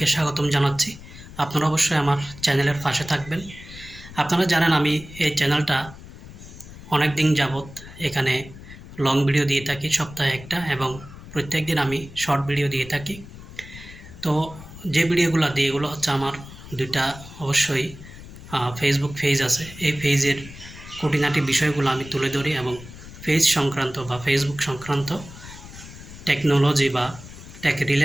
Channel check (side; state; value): left; noise; rumble, 16 dB below the sound